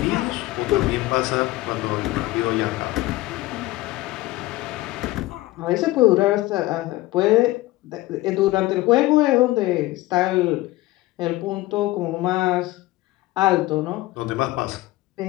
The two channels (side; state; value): right; quieter; 18.2 dB